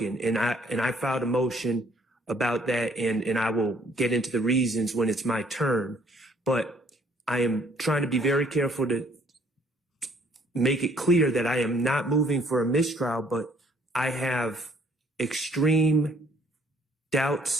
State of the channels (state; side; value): normal; both; correlation 0.63